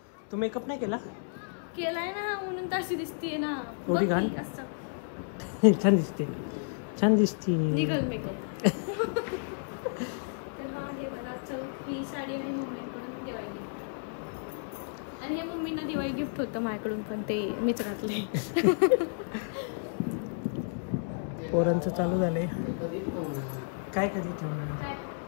तू मेकअप नाही केला? केलाय ना, म्हणून तशी दिसते ना. एवढी घाण? छान दिसते, छान दिसते. निघल मेकअप. तर हा हे बघा, चल ही साडी आणि मम्मीकडून दिवाळी गिफ्ट. आणि हे मम्मींना दिवाळी गिफ्ट होतं माझ्याकडून, पण ते मीच घातले. पोरांचं चालू झालंय. काय कधी ठेवणार?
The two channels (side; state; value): right; silent; digital silence